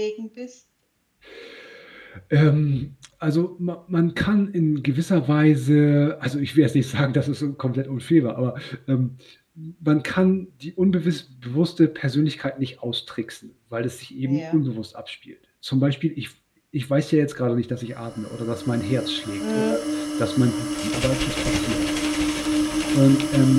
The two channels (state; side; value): identical; both; correlation 1.00